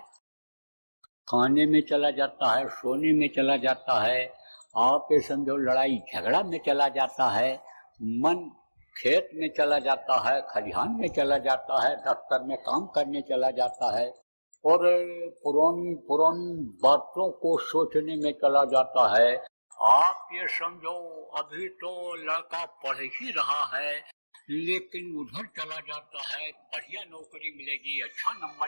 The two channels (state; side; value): inverted; both; correlation -1.00